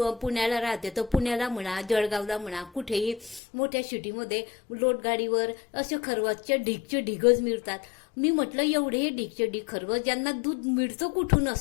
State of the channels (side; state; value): right; drops out; at 3.4 s